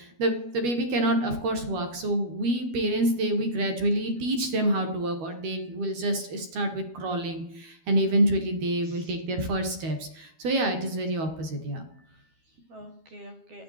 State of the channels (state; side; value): late; left; 12 ms